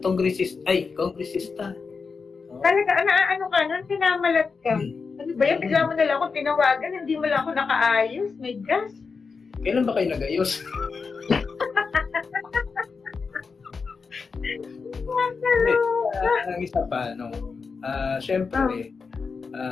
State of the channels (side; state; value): right; quieter; 5.0 dB